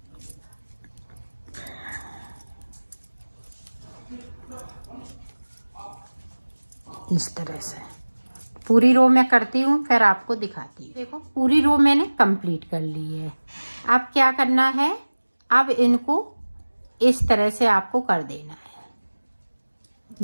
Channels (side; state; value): both; inverted; correlation -1.00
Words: इस तरह से पूरी रो मैं करती हूँ, फिर आपको दिखाती हूँ। देखो, पूरी रो मैंने कंप्लीट कर ली है। अब क्या करना है, अब इनको इस तरह से आपको कर देना